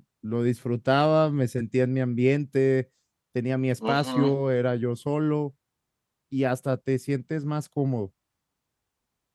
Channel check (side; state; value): both; identical; correlation 1.00